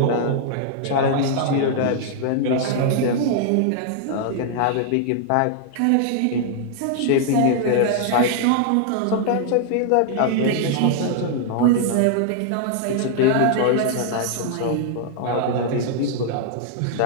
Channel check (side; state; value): both; different; correlation -0.01